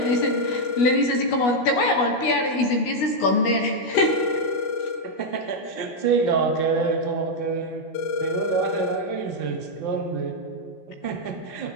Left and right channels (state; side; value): late; right; 16 ms